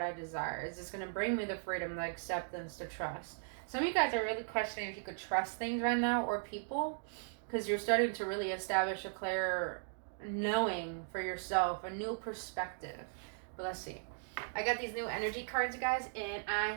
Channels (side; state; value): left; silent; digital silence